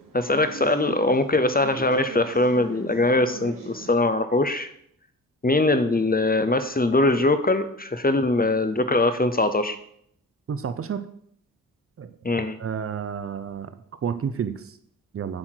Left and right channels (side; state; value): both; normal; correlation 0.33